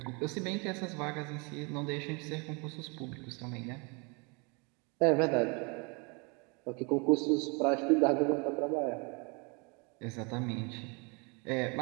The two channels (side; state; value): left; quieter; 31.4 dB